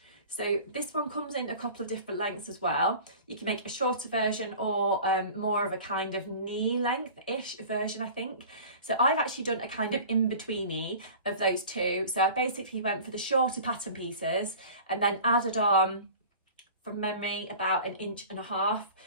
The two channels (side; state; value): both; inverted; correlation -0.40